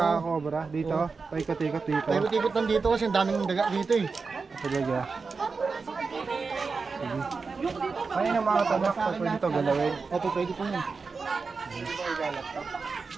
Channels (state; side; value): quieter; left; 4.6 dB